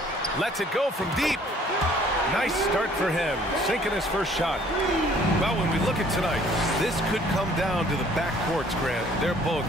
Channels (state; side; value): normal; both; correlation 0.58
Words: Lets it go from deep. Nice start for him, sinking his first shot. Well, when we look at tonight, this could come down to the backcourts, Grant. They're both